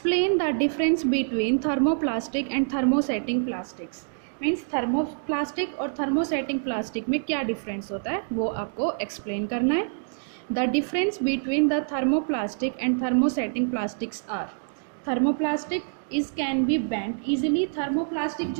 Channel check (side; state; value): left; silent; digital silence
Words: the difference between thermoplastic and thermosetting plastics. Means thermoplastic और thermosetting plastic में क्या difference होता है वो आपको explain करना है. The difference between the thermoplastic and thermosetting plastics are. Thermoplastic is can be bent easily. Thermoplastic